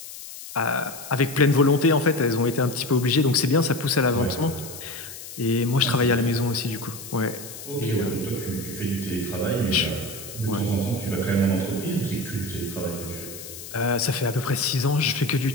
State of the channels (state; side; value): noise; left; hiss, 13 dB below the sound